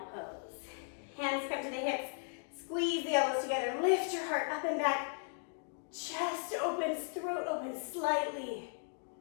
pose. Hands come to the hips. Squeeze the elbows together. Lift your heart up and back. Chest opens, throat opens slightly.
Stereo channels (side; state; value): right; silent; 53 dB below the other